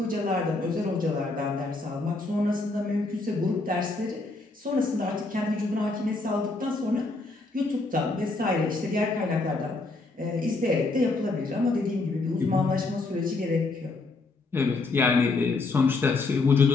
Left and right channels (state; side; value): quieter; right; 3.4 dB